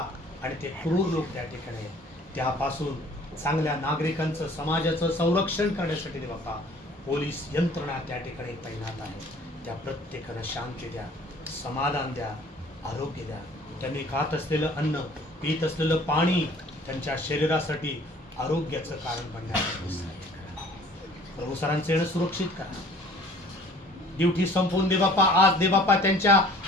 आणि ते क्रूर लोक त्या ठिकाणी आहेत. त्यापासून चांगल्या नागरिकांचं, समाजाचं संरक्षण करण्यासाठी देवप्पा पोलीस यंत्रणा त्या ठिकाणी तैनात आहे. त्या प्रत्येकाला शांती द्या, समाधान द्या, आरोग्य द्या. त्यांनी खात असलेलं अन्न, पीत असलेलं पाणी त्यांच्या शरीरासाठी आरोग्याचं कारण बनण्यासाठी प्रभू सरांचे येणं सुरक्षित करा. ड्युटी संपवून दे बाप्पा आज दे बाप्पा त्यांच्या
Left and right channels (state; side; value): normal; both; correlation 0.52